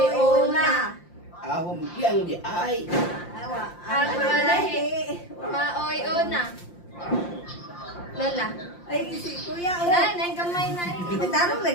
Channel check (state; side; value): late; right; 5.7 ms